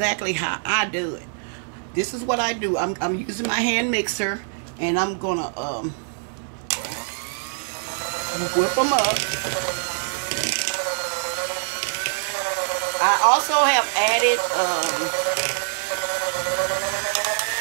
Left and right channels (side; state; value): left; silent; 63 dB below the other